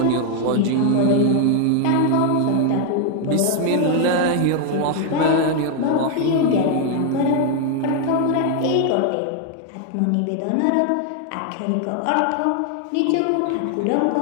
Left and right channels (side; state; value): both; different; correlation 0.00